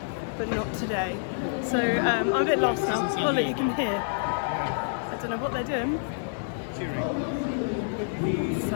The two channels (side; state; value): right; silent; 59 dB below the other